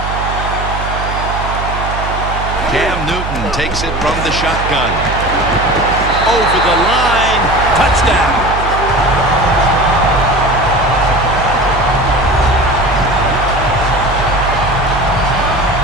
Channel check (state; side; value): noise; right; hum, 6 dB below the sound